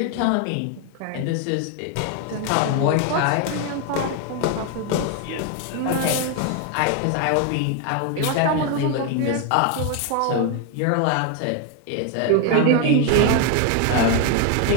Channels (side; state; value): both; different; correlation 0.01